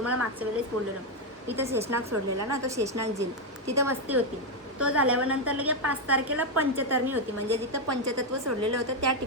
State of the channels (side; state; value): both; normal; correlation 0.03